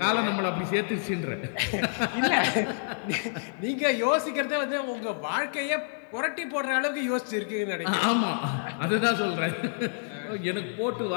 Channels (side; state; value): right; silent; digital silence